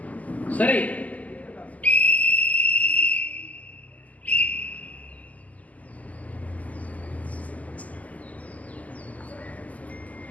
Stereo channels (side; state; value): right; late; 0.075 ms